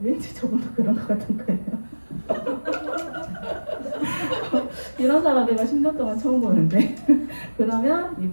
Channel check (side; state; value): both; inverted; correlation -1.00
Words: 왠지 저분도 그런 것 같은 거예요. 이런 사람 내가 10년 동안 처음 보는데 그러면